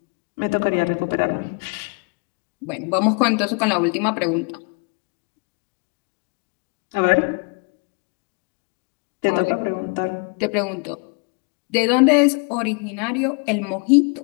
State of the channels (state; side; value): quieter; right; 33.2 dB